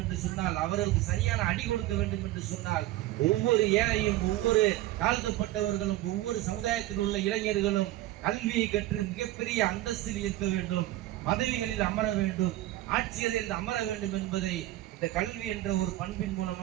என்று சொன்னால், அவர்களுக்கு சரியான அடி கொடுக்க வேண்டும் என்று சொன்னால், ஒவ்வொரு ஏழையும் ஒவ்வொரு தாழ்த்தப்பட்டவர்களும் ஒவ்வொரு சமுதாயத்தில் உள்ள இளைஞர்களும் கல்வியை கற்று மிகப்பெரிய அந்தஸ்தில் இருக்க வேண்டும், பதவிகளில் அமர வேண்டும், ஆட்சியரில் அமர வேண்டும் என்பதை இந்த கல்வி என்ற ஒரு பண்பின்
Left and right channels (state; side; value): quieter; left; 16.0 dB